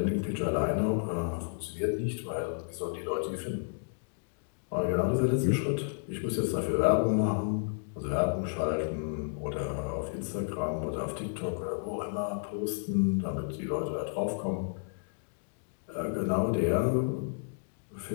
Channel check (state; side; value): silent; right; digital silence